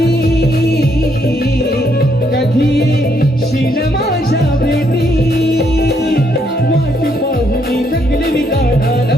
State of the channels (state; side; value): normal; both; correlation 0.73